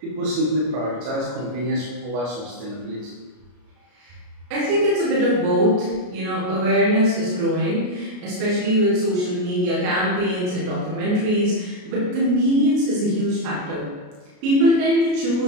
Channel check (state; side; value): late; left; 33 ms